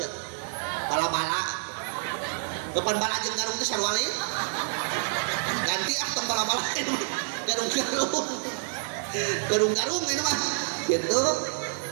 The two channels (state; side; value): silent; left; digital silence